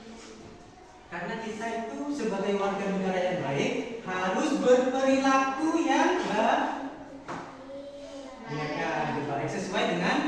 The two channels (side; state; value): both; identical; correlation 1.00